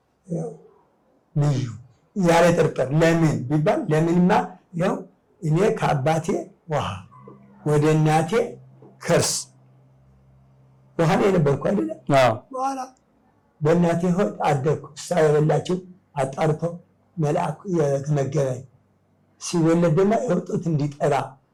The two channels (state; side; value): identical; both; correlation 1.00